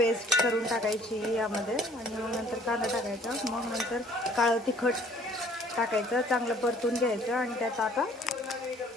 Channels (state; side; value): normal; both; correlation 0.57